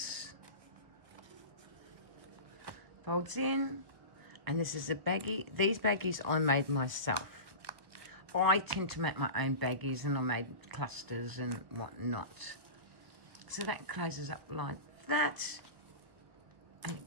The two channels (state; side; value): late; left; 1.5 ms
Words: Folds in. And this is a baggie. These baggies I made myself. I tend to make my own baggies, and I made clusters and whatnot. So that closes up like that. And it